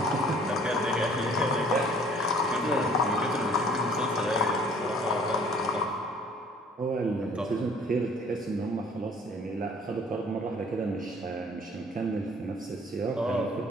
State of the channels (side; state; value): both; normal; correlation 0.54